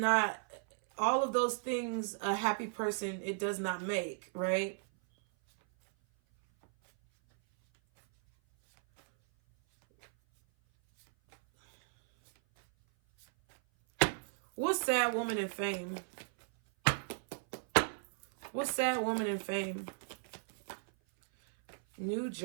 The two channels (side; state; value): left; silent; 55 dB below the other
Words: all of those things, a happy person, it does not make, right? What's sad woman in fame? What's sad woman in fame? New